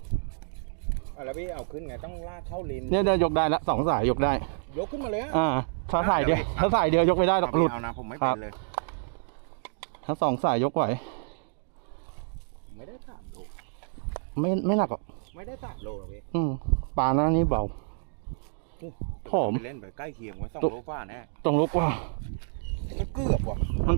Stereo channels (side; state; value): left; silent; digital silence